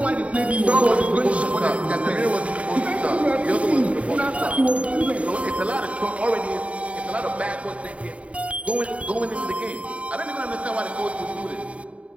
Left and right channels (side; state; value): left; late; 0.064 ms